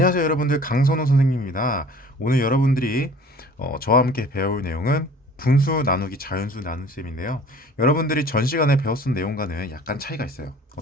여러분들, 강선호 선생님입니다. 오늘 여러분들이 저와 함께 배울 내용은 분수 나누기 자연수 나눗셈인데요. 여러분들이 전 시간에 배웠던 내용과는 약간 차이가 있어요.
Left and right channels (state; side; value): normal; both; correlation 0.48